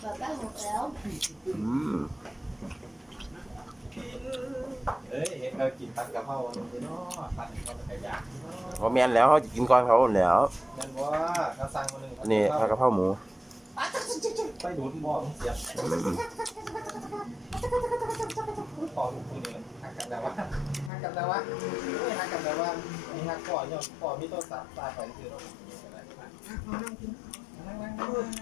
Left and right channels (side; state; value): right; drops out; at 20.9 s